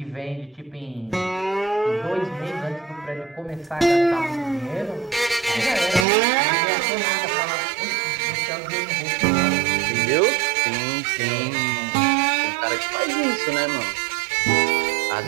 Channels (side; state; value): left; drops out; at 6.1 s